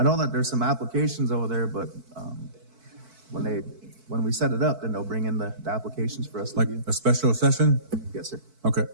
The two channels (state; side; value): late; left; 4.5 ms